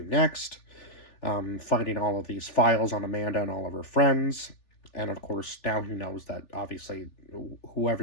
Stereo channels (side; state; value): right; late; 3.5 ms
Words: next, finding all of these files on Amanda and all of her friends. And of course, now he knows that obviously, whoever